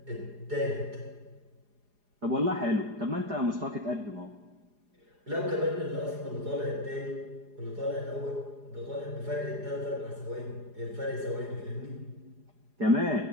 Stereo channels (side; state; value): left; late; 4.8 ms